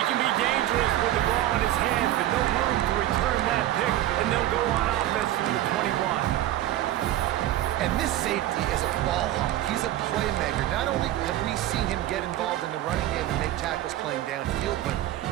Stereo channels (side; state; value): left; quieter; 13.8 dB